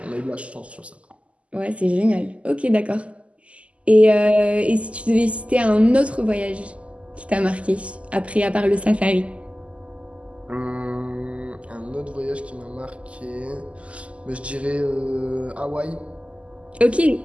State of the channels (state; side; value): late; left; 0.061 ms